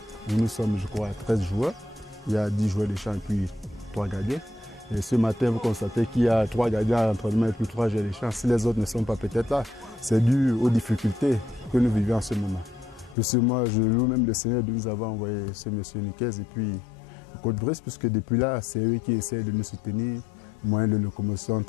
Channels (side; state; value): right; drops out; at 13.2 s